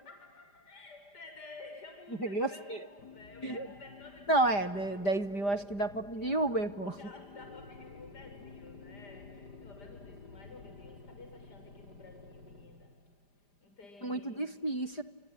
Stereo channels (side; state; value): right; late; 5.0 ms